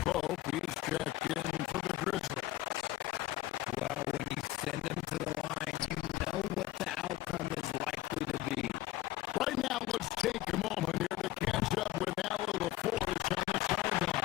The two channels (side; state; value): right; quieter; 15.9 dB